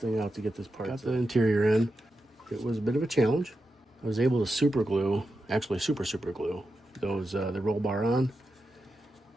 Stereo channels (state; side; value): normal; both; correlation 0.89